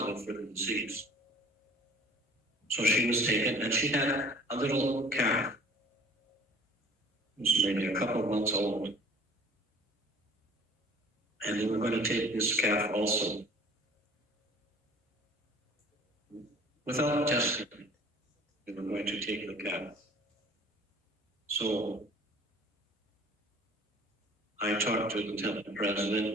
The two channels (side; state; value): both; normal; correlation 0.48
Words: for the disease. So she was taken, and she had a little calf. It was maybe a couple of months old. And they were going to take this calf also. Without testing, they were going to take the calf. So I talked to the temple